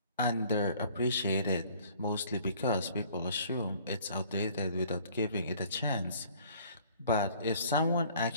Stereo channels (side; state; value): both; inverted; correlation -0.55